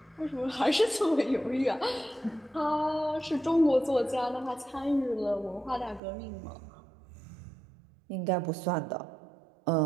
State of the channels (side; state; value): left; drops out; at 6.0 s